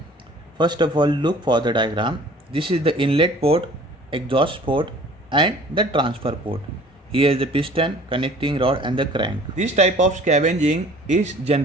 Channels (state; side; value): normal; both; correlation 0.49